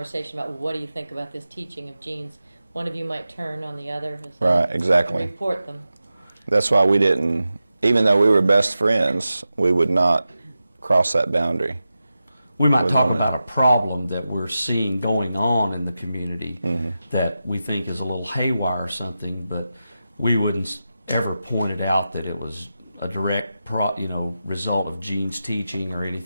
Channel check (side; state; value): both; inverted; correlation -0.92